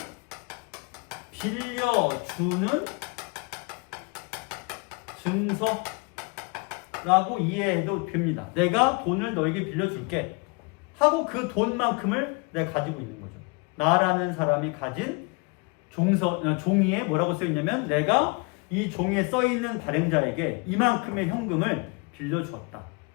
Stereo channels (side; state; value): right; quieter; 30.0 dB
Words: 빌려주는 증서라고 이해해도 됩니다. 내가 돈을 너에게 빌려줄게 하고 그 돈만큼을 내가 가지고 있는 거죠. 나라는 사람이 가진 종이에 뭐라고 써있냐면 내가 이 종이에 써있는 발행자에게 이만큼의 현금을 빌려주었다.